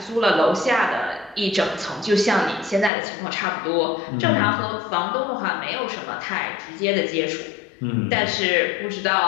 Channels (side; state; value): right; drops out; at 2.9 s